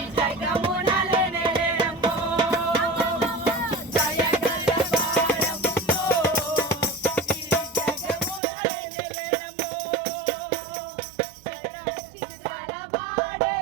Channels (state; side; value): drops out; left; at 8.4 s